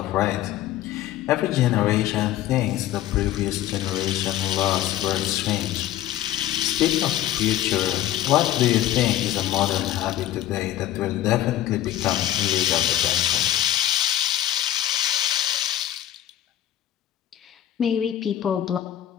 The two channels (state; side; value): quieter; right; 12.8 dB